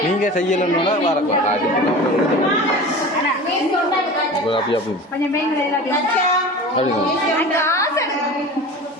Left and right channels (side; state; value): both; normal; correlation 0.35